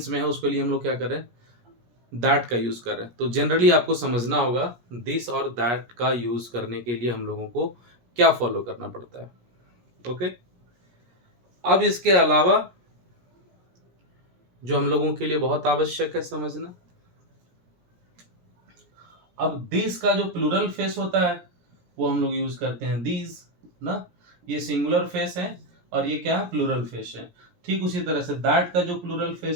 में है उसके लिए हम लोग क्या कर रहे हैं, दैट का यूज़ कर रहे हैं। तो जनरली आपको समझना होगा दिस और दैट का यूज़ करने के लिए हम लोगों को क्या फॉलो करना पड़ता है। ओके, अब इसके अलावा जो हम लोगों के लिए बहुत आवश्यक है समझना, अब दिस का जो प्लूरल फेस होता है वो हम लोग यूज करते हैं दीज ना, ये सिंगुलर फेस है और ये क्या है, प्लूरल फेस है। ठीक उसी तरह से दैट का जो प्लूरल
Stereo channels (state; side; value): late; left; 17 ms